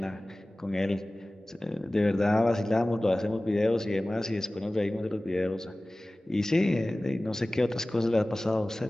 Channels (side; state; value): both; normal; correlation 0.98